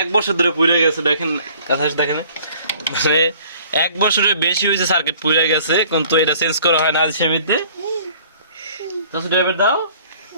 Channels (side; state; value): both; inverted; correlation -0.53